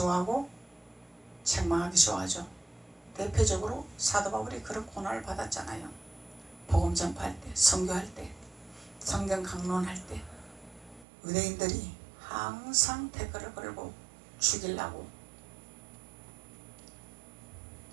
책망하기 좋아하죠. 대표적으로 사도 바울이 그런 고난을 받았잖아요. 복음 전파할 때, 선교할 때, 성경 강론할 때 유대인들이 항상 댓글을 걸고 죽이려고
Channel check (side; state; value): left; drops out; at 11.1 s